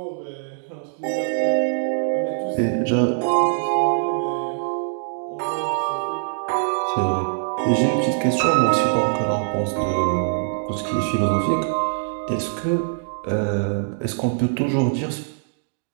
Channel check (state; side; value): silent; left; digital silence